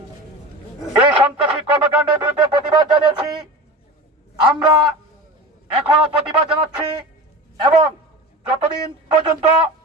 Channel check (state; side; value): normal; both; correlation 0.31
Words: এই সন্ত্রাসী কর্মকাণ্ডের বিরুদ্ধে প্রতিবাদ জানিয়েছি, আমরা এখনো প্রতিবাদ জানাচ্ছি এবং যতদিন পর্যন্ত